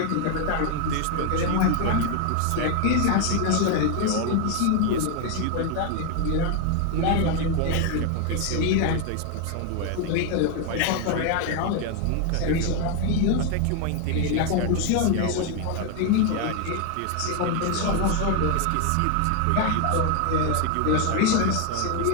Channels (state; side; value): different; both; correlation 0.01